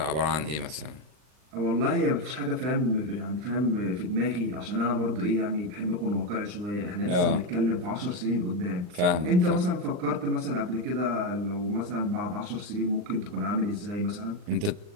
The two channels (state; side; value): late; left; 39 ms